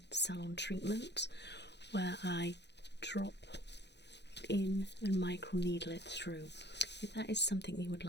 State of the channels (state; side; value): late; right; 0.50 ms